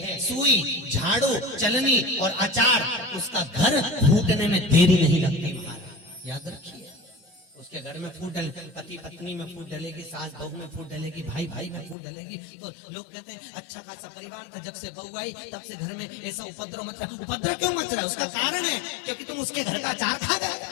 सुई, झाड़ू, चलनी और अचार, उसका घर फूटने में देरी नहीं लगती महाराज, याद रखिए। उसके घर में फूट डले, पति पत्नी में फूट डलेगी, सास बहू में फूट डलेगी, भाई भाई में फूट डलेगी, तो लोग कहते हैं अच्छा खासा परिवार था, जब से बहू आई तब से घर में ऐसा उपद्रव मच रहा। उपद्रव क्यों मच रहा है? उसका कारण है क्योंकि तुम उसके घर का अचार खा गए।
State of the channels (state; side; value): drops out; right; at 12.0 s